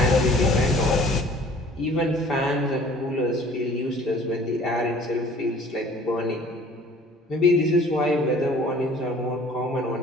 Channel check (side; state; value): both; normal; correlation 0.51